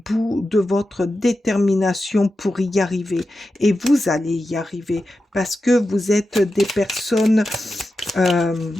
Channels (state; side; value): normal; both; correlation 0.91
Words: de votre détermination pour y arriver. Et vous allez y arriver parce que vous êtes des personnes